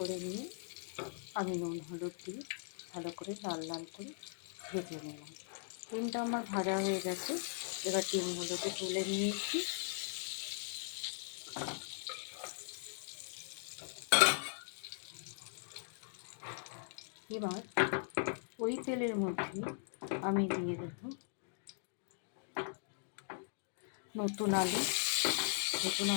নিয়ে আমি নুন হলুদ দিয়ে ভালো করে লাল লাল করে ভেজে নিলাম। ডিমটা আমার ভাজা হয়ে গেছে, এবার ডিমগুলোকে তুলে নিয়েছি। এবার ওই তেলের মধ্যে আমি দিয়ে দেব নতুন আলু। নতুন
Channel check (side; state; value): right; silent; digital silence